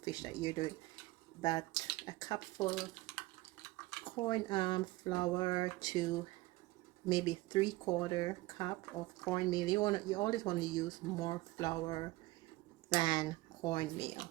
that you're doing, but a cup full of corn flour to maybe 3/4 cup of cornmeal. You always want to use more flour than cornmeal.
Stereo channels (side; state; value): left; quieter; 19.6 dB